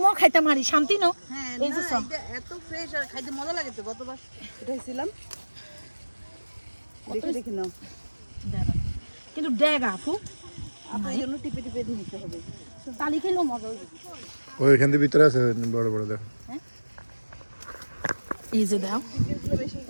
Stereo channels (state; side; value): inverted; both; correlation -1.00